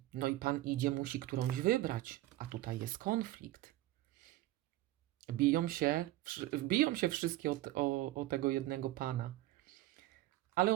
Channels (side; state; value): left; quieter; 16.4 dB